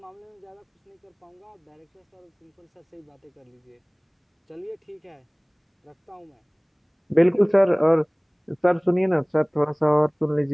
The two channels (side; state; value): both; identical; correlation 1.00